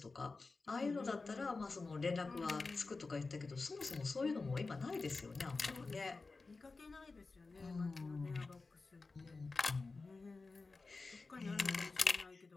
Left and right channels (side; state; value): right; quieter; 3.9 dB